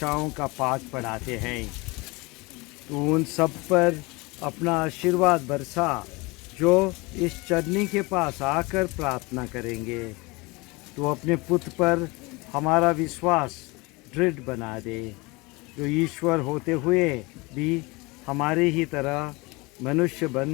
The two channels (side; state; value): right; quieter; 25.1 dB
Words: का पाठ पढ़ाते हैं। तो उन सब पर अपना आशीर्वाद बरसा जो इस चरनी के पास आकर प्रार्थना करेंगे। तो अपने पुत्र पर हमारा विश्वास दृढ़ बना दे, जो ईश्वर होते हुए भी हमारे ही तरह मनुष्य